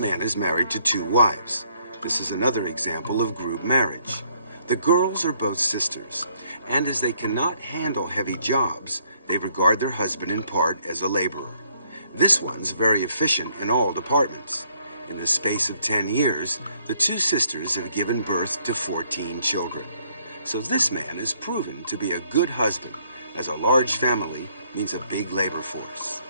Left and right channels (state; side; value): inverted; both; correlation -0.67